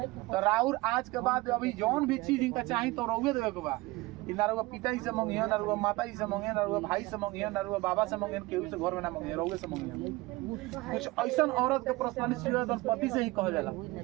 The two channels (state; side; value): quieter; left; 21.3 dB